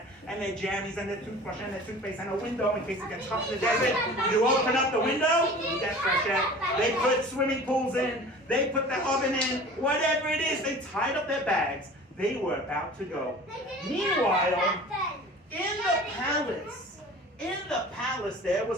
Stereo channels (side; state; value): both; normal; correlation 0.41